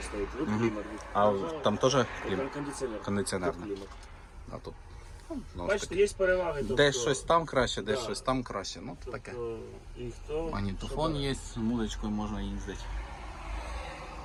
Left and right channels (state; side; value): identical; both; correlation 1.00